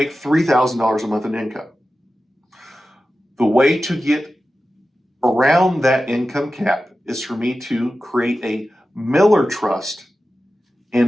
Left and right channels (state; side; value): normal; both; correlation 0.93